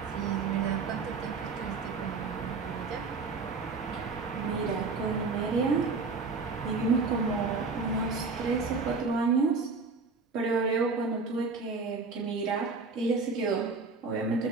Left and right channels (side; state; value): left; quieter; 4.3 dB